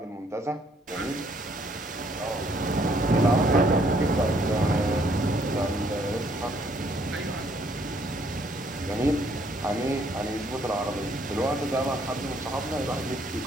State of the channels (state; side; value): normal; both; correlation 0.66